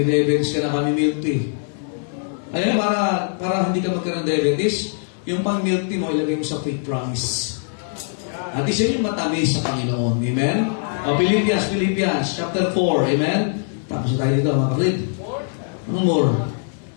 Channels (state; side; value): silent; right; digital silence